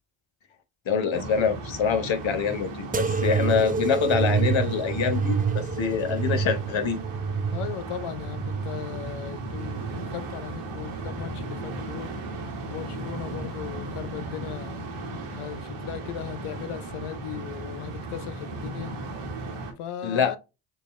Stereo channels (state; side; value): normal; both; correlation 0.25